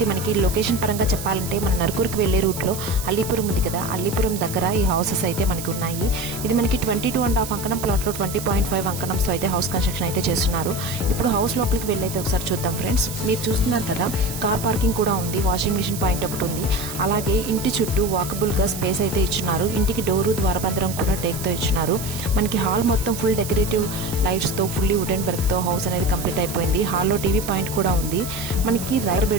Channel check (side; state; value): right; noise; hiss, 9 dB below the sound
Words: మనకి లొకేషన్ పరంగా చెప్పాలంటే మన నరుకూరుకి వెళ్లే రూట్లో అల్లీపురం ఉంది కదా, అల్లీపురం దగ్గర ఈ హౌసెస్ అయితే మనకి ఉన్నాయి. ఇది మనకి 22.5 అంకణం ప్లాట్లో 20.5 అంకణంతో అయితే హౌస్ కన్స్ట్రక్షన్ అయితే చేస్తున్నారు. ఇప్పుడు హౌస్ లోపలికి వెళ్ళైతే ఒకసారి చూద్దాం ఫ్రెండ్స్. మీరు చూస్తున్నారు కదా, కార్ పార్కింగ్ కూడా ఉంది, వాషింగ్ మిషన్ పాయింట్ ఒకటి ఉంది. అలాగే ఇంటి చుట్టూ వాకబుల్ గా స్పేస్ అయితే ఇచ్చున్నారు. ఇంటికి డోరు ద్వారబంధరం కూడా టేక్ తో ఇచ్చినారు. మనకి హాల్ మొత్తం ఫుల్ డెకరేటివ్ లైట్స్ తో ఫుల్లీ వుడెన్ వర్క్ తో హౌస్ అనేది కంప్లీట్ అయిపోయింది. హాల్లో టీవీ పాయింట్ కూడా ఉంది. మనకి రైడర్